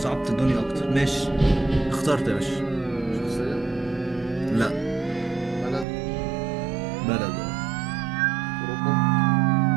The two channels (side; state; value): left; drops out; at 5.9 s